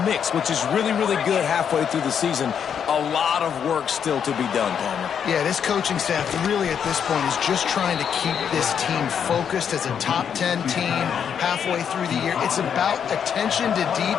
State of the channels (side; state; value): right; quieter; 7.9 dB